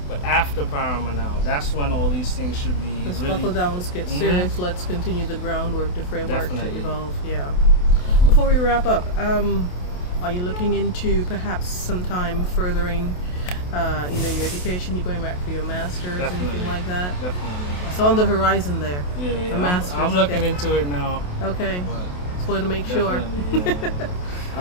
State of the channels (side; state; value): right; late; 28 ms